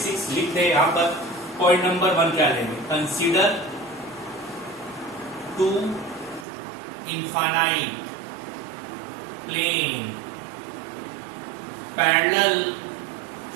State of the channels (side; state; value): left; drops out; at 6.5 s